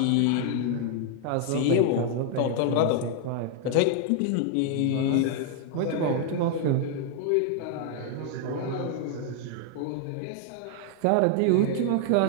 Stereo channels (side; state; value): both; different; correlation 0.00